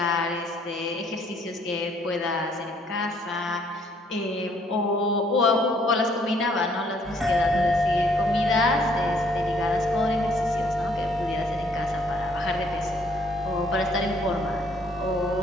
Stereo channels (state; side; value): normal; both; correlation 0.64